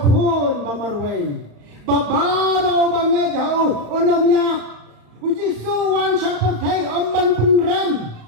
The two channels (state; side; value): late; left; 35 ms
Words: khon bamarwei babaro banget jauh onomnya uji suwan sapertai amban penram